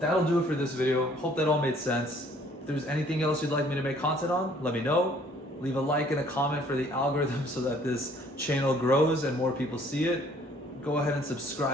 do it for this video. Hope that all made sense. If there's anything else you'd like me to make content on, let me know. Leave a like and a comment for the algorithm so that this channel grows and more people see it. Go ahead and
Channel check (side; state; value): both; normal; correlation 0.59